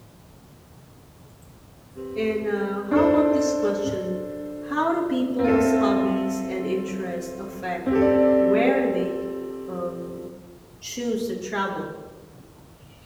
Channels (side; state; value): both; identical; correlation 1.00